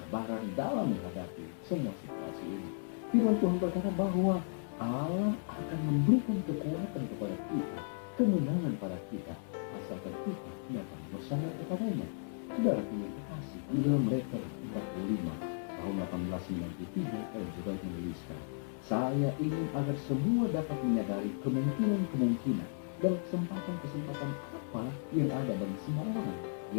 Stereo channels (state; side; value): silent; right; digital silence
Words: dalam menghadapi semua situasi ini. Firman Tuhan berkata bahwa Allah akan memberikan kekuatan kepada kita, kemenangan pada kita, asalkan kita datang bersandar kepadanya. Saudaraku yang kekasih, di dalam letter 45 tahun 1893, Ellen G. White menuliskan, saya ingin agar semua dapat menyadari kemungkinan-kemungkinan dan kesempatan-kesempatan apa yang ada bagi semua orang